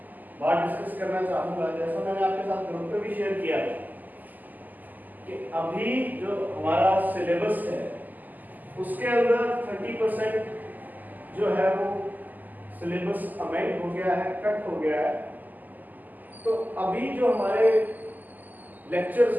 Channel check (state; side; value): late; left; 0.084 ms